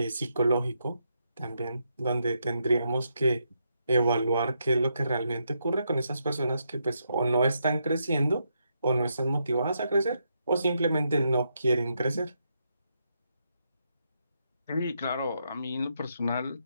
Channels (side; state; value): both; inverted; correlation -0.80